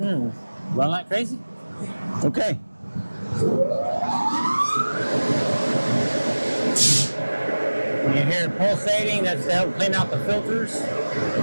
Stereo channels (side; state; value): both; inverted; correlation -1.00